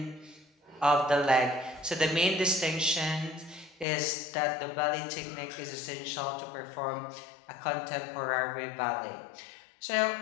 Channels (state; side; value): drops out; right; at 3.9 s